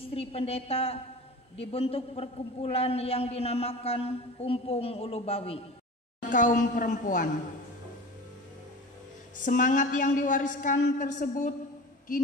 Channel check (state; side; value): normal; both; correlation 0.35